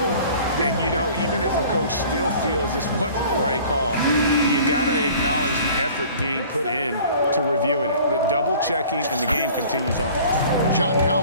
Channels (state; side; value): inverted; both; correlation -0.48